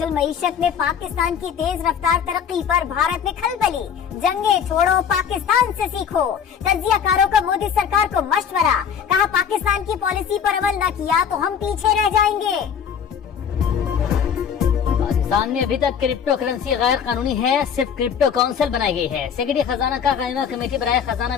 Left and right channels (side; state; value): right; quieter; 7.7 dB